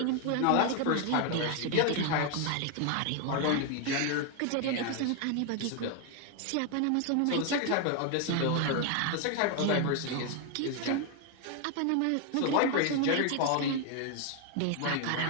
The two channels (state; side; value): different; both; correlation 0.00